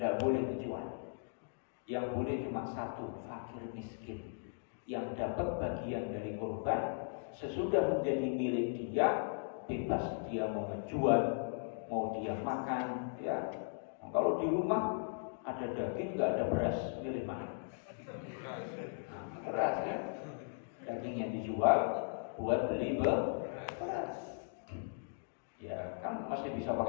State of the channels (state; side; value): silent; right; digital silence